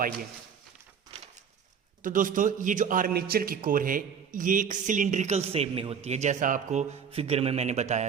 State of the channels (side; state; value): left; quieter; 7.1 dB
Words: तो दोस्तों, ये जो आर्मेचर की कोर है ये एक सिलिंड्रिकल शेप में होती है, जैसा आपको फिगर में मैंने